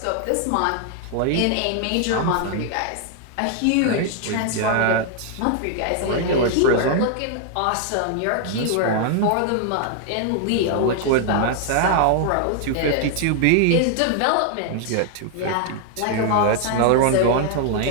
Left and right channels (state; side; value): different; both; correlation 0.00